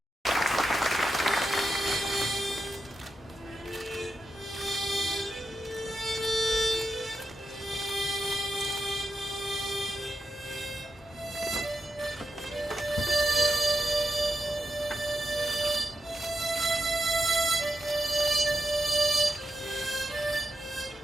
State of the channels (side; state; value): both; normal; correlation 0.88